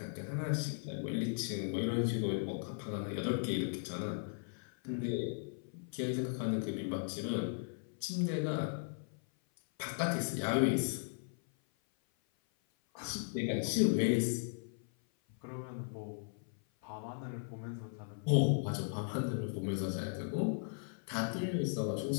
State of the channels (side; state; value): right; silent; 53 dB below the other